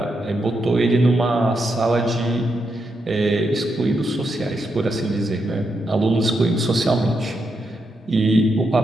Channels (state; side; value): normal; both; correlation 0.83